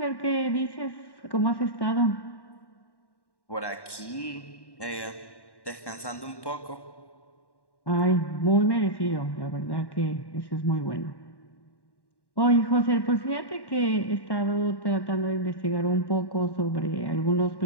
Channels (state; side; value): late; right; 1.1 ms